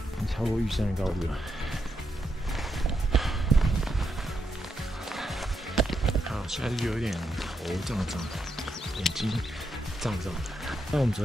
超过玉山的高度了。好，现在就有点头胀，眼睛胀的。那我们昨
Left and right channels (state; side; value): normal; both; correlation 0.82